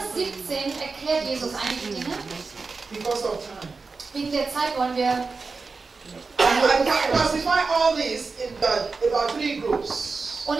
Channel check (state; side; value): quieter; left; 4.3 dB